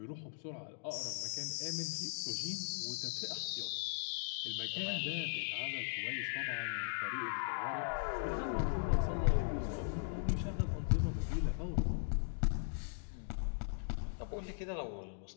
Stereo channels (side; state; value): right; silent; digital silence